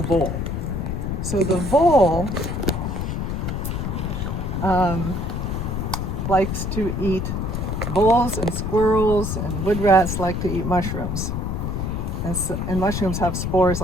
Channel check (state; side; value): noise; left; rumble, 2 dB below the sound